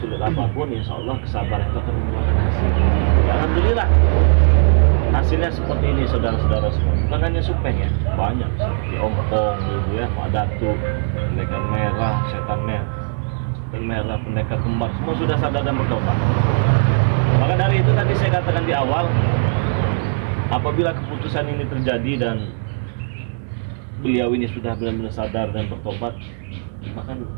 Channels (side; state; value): left; silent; digital silence